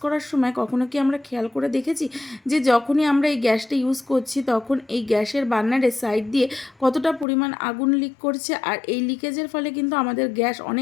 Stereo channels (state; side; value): drops out; right; at 7.2 s